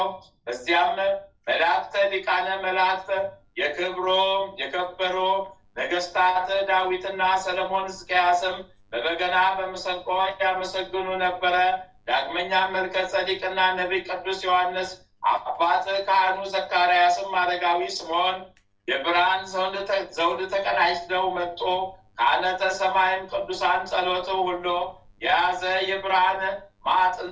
በዚያም መላእክተ ሊቃነ መላእክት የከበሩ ነገስታት ዳዊትና ሰለሞን ሕዝቅያስም በበገና በመሰንቆ ያመሰግኑ ነበረ። ዳግመኛ መልከ ጸዲቅና ነቢይ ቅዱስ ዮሐንስ አባት ካህኑ ዘካርያስም አረጋዊ ስምዖን የብርሃን ዘውድ ተቀዳጅተው መጡ። ካህናተ ሰማይም ቅዱሳን ጸሎት ሁሉ የያዘ የብርሃን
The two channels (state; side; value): identical; both; correlation 1.00